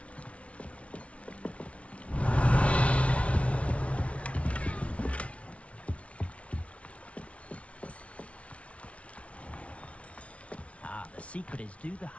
The secret is do the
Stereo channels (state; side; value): late; right; 0.063 ms